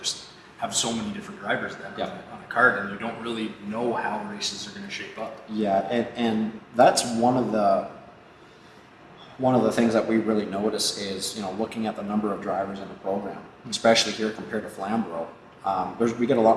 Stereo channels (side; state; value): both; identical; correlation 1.00